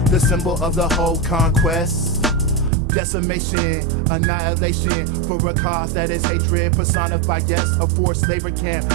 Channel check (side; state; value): left; drops out; at 2.7 s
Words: the symbol of the whole conquest. decimation, annihilation, for a cause that is hatred, personified, yes, a forced labor camp,